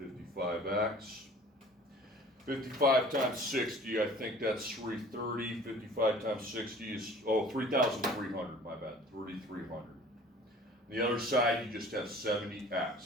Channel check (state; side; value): normal; both; correlation 0.48